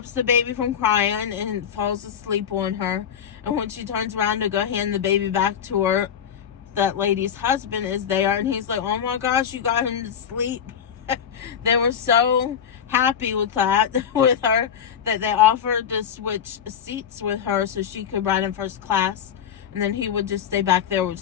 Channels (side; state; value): right; quieter; 8.3 dB